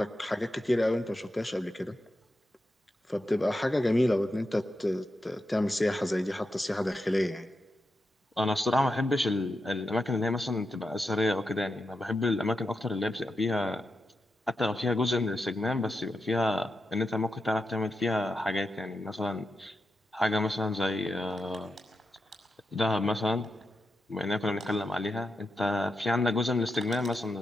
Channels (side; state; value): both; normal; correlation 0.87